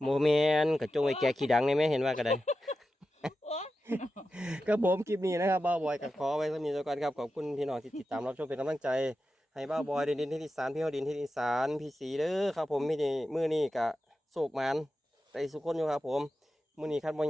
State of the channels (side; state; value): both; normal; correlation 0.91